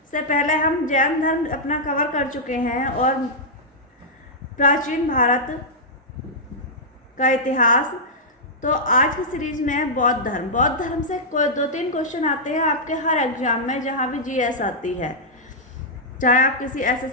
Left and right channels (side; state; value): both; normal; correlation -0.09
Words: से पहले हम जैन धर्म अपना कवर कर चुके हैं और प्राचीन भारत का इतिहास। तो आज की सीरीज में है बौद्ध धर्म। बौद्ध धर्म से कोई 2-3 क्वेश्चन आते हैं आपके हर एग्जाम में, जहाँ भी जीएस आती है, चाहे आप किसी